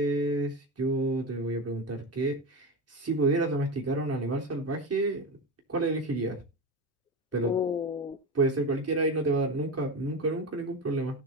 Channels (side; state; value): both; normal; correlation 0.20